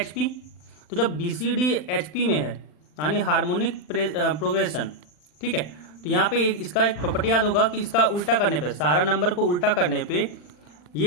P, तो जब B C D H P में है यानी हार्मोनिक प्रोग्रेशन, ठीक है, तो यहाँ पे इसका एक प्रॉपर्टी याद होगा कि इसका उल्टा करने पे, सारा नंबर को उल्टा करने पे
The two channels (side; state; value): right; late; 40 ms